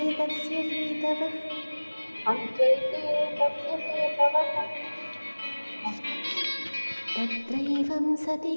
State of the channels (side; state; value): both; inverted; correlation -1.00